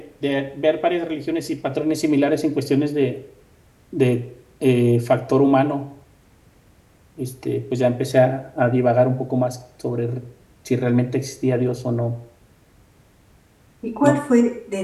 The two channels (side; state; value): both; identical; correlation 1.00